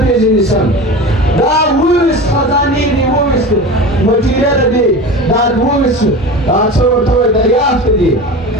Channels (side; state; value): both; normal; correlation 0.31